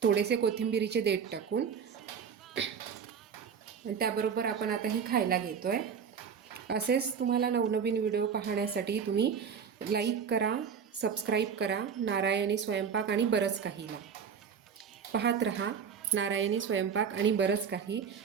थोडेसे कोथिंबिरीचे देठ टाकून. आणि त्याबरोबर आपण आता ही खायला घेतो आहे. असेच तुम्हाला नवनवीन व्हिडिओ पाहण्यासाठी तुम्ही लाईक करा, सबस्क्राईब करा नारायणी स्वयंपाक आणि बरंच काहीला. पाहत रहा नारायणी स्वयंपाक आणि बरंच काही.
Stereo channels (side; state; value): left; quieter; 6.9 dB